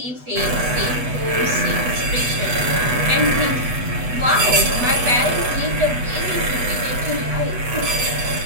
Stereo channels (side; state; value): left; late; 8.1 ms